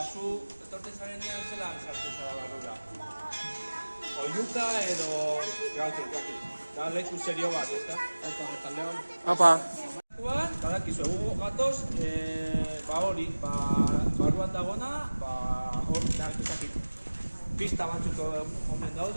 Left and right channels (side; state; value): both; inverted; correlation -1.00